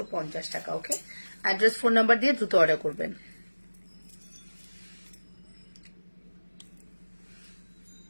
টাকা। ওকে, অ্যাড্রেস ফোন নাম্বার দিয়ে দ্রুত অর্ডার করবেন।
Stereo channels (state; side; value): inverted; both; correlation -1.00